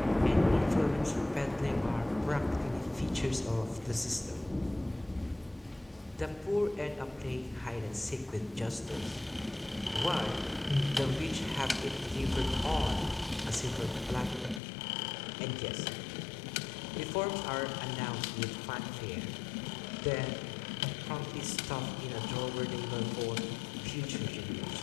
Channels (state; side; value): drops out; right; at 14.6 s